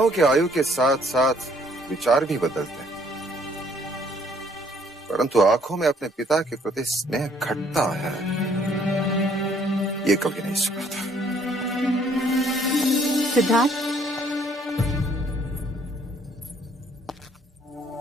कि आयु के साथ साथ विचार भी बदलते हैं, परंतु आंखों में अपने पिता के प्रति स्नेह घटता है, ये कभी नहीं सुना था। सिद्धार्थ,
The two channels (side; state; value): both; normal; correlation 0.63